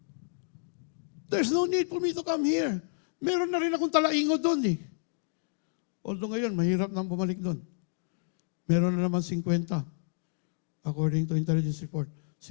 There's no need for me to come here. Meron na rin akong talaingo doon eh. Although ngayon, mahirap nang bumalik doon. Meron na naman 50. According to intelligence report.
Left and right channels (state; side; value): silent; right; digital silence